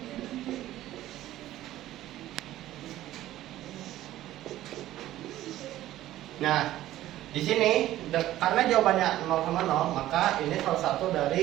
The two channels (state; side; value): quieter; left; 14.3 dB